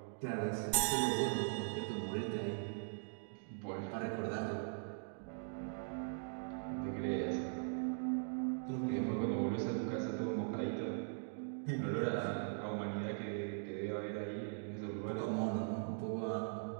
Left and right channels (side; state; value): left; silent; digital silence